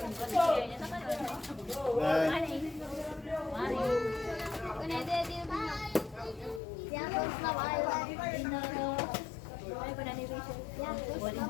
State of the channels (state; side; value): drops out; right; at 6.6 s